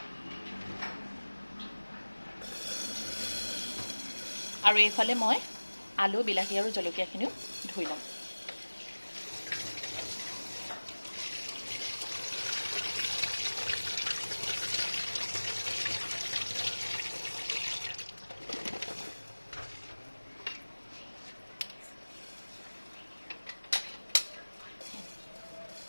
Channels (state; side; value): inverted; both; correlation -1.00